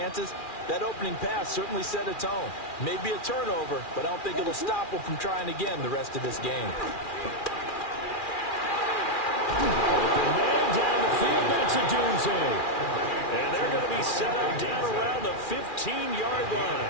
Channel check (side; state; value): right; late; 2.4 ms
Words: That opening pass certainly set a tone. Maybe a turnover, but I don't think it'll stop them from trying again the rest of this game. Open man down the field, that's a doomsday. And they're going to be set up down around the 15-yard